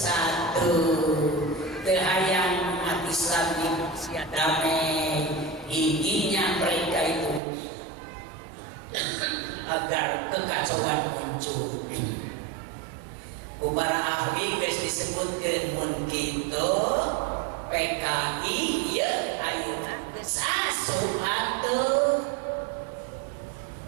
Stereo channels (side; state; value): left; drops out; at 7.4 s